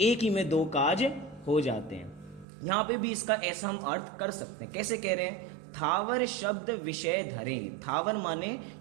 ही में दो काज हो जाते हैं। यहाँ पे भी इसका ऐसा हम अर्थ कर सकते हैं। कैसे कह रहे हैं, थावर शब्द विषय धरे। थावर माने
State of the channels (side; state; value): left; drops out; at 2.5 s